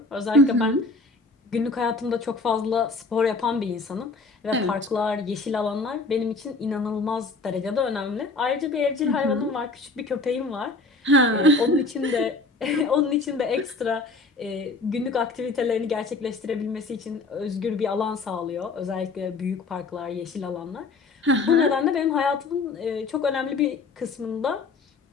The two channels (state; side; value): quieter; right; 3.6 dB